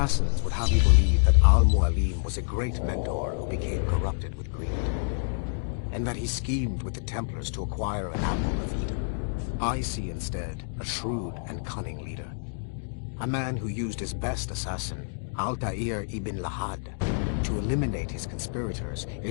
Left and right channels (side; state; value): right; silent; digital silence